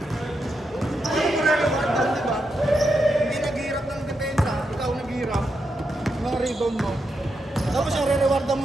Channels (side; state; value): both; normal; correlation 0.84